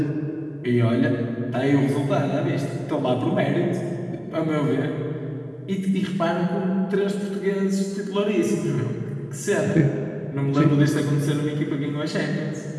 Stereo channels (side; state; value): both; identical; correlation 1.00